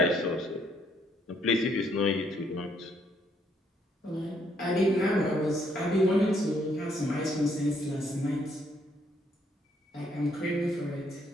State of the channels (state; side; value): normal; both; correlation 0.70